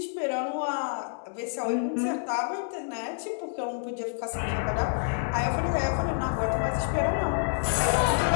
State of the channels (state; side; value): silent; right; digital silence